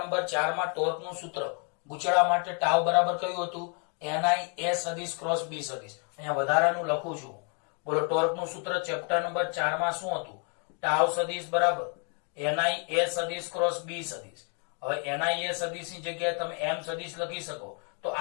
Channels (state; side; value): quieter; right; 38.7 dB